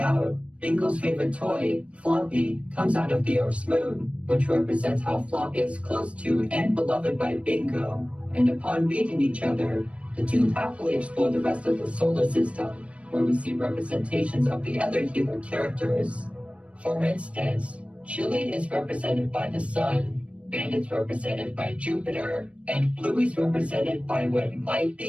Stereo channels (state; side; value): late; left; 0.062 ms